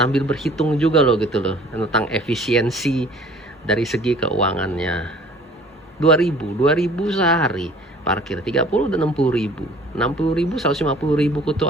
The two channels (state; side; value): normal; both; correlation 0.51